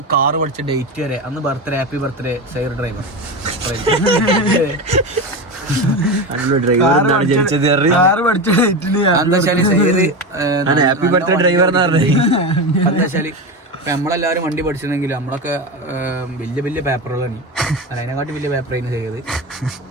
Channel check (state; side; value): normal; both; correlation 0.20